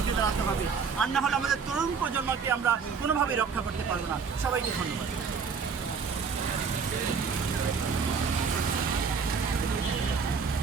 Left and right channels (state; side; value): quieter; left; 5.7 dB